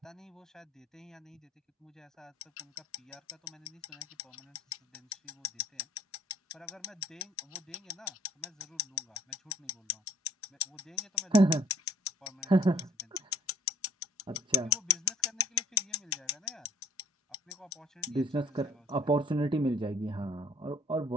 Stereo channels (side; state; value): both; normal; correlation 0.59